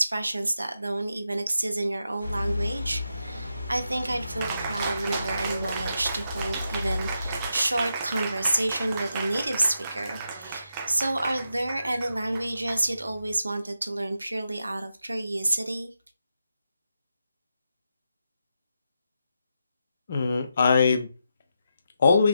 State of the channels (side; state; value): both; inverted; correlation -0.85